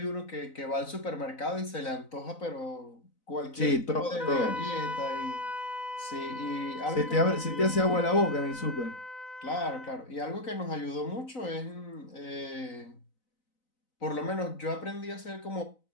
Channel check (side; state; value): right; late; 4.0 ms